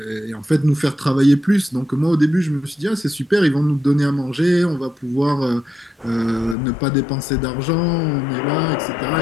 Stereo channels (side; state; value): right; drops out; at 6.6 s